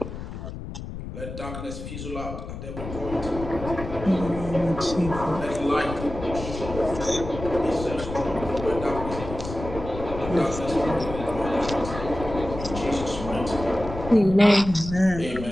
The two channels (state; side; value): noise; left; rumble, 9 dB below the sound